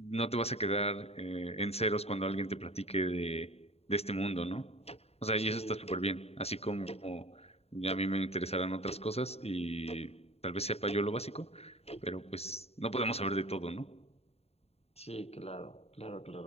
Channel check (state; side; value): late; right; 0.30 ms